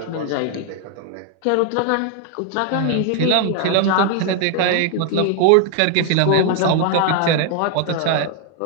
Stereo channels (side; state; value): both; different; correlation 0.00